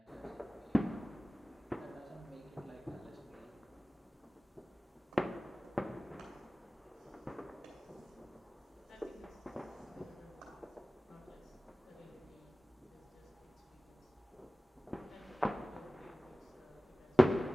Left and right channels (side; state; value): both; normal; correlation 0.98